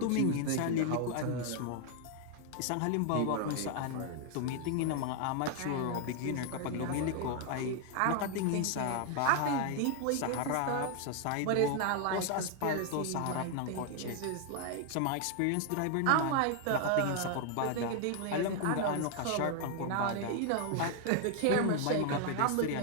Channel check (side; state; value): both; different; correlation 0.00